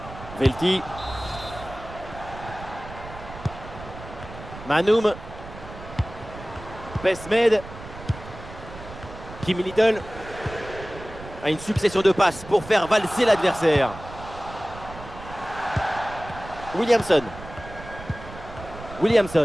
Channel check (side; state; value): right; noise; rumble, 14 dB below the sound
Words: Velti. Manum. Besmed. Kim Little. À une succession de passes pour faire valser l'adversaire. Williamson.